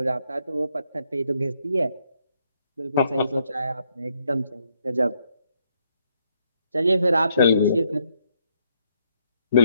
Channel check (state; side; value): inverted; both; correlation -0.74